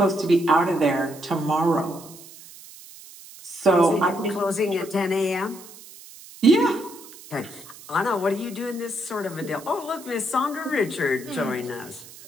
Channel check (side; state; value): right; noise; hiss, 18 dB below the sound